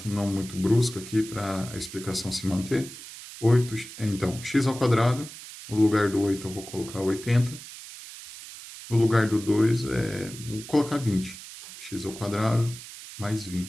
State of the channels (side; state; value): right; noise; hiss, 14 dB below the sound